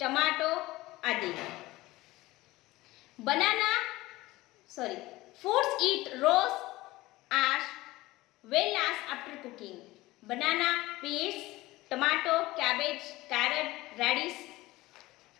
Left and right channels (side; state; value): right; quieter; 18.8 dB